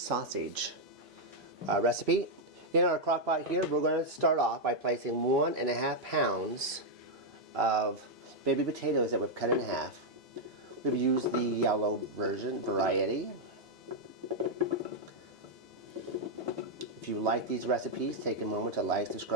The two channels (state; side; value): normal; both; correlation -0.02